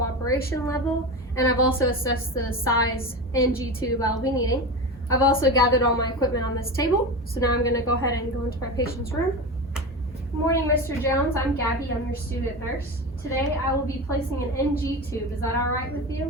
level. And I've also assessed the size NG tube I'll be needing. I've also gathered all my equipment on this table. So now I'm going to go ahead and go into my patient's room. Good morning, Mr. Jones. I'm Gabby. I'm your student nurse. Today I will be placing an NG tube. Is that all right with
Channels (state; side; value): normal; both; correlation 0.24